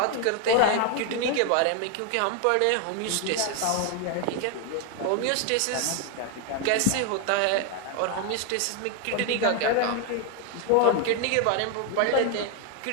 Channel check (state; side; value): different; both; correlation 0.01